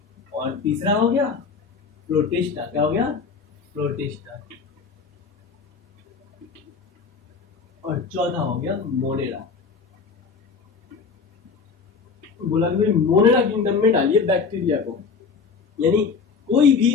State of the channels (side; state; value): right; quieter; 5.2 dB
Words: और तीसरा हो गया प्रोटिस्टा। क्या हो गया? प्रोटिस्टा। और चौथा हो गया मोनेरा। बोला कि भाई मोनेरा किंगडम में डालिए बैक्टीरिया को। यानी कोई भी